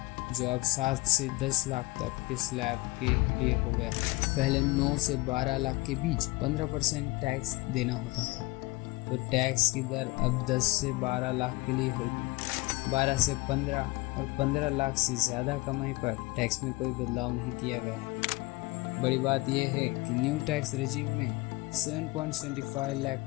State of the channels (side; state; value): right; quieter; 22.6 dB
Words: जो अब 7 से 10 लाख तक के स्लैब के लिए हो गया है। पहले 9 से 12 लाख के बीच 15% टैक्स देना होता था, तो टैक्स की दर अब 10 से 12 लाख के लिए होगी। 12 से 15 और 15 लाख से ज़्यादा कमाई पर टैक्स में कोई बदलाव नहीं किया गया है। बड़ी बात यह है कि न्यू टैक्स रेजिम में 7.75